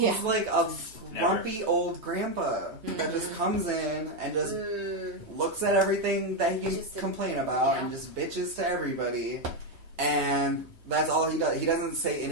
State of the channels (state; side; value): late; left; 3.3 ms